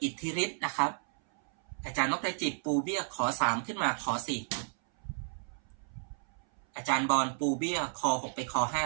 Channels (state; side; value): silent; left; 56 dB below the other